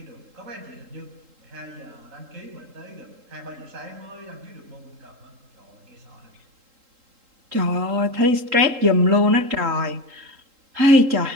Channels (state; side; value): late; left; 3.8 ms